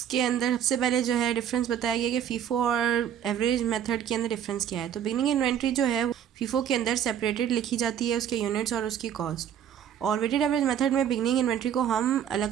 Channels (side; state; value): left; quieter; 9.4 dB